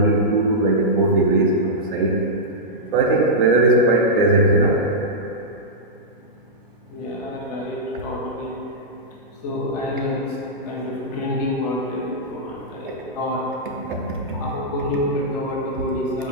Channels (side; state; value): both; normal; correlation -0.10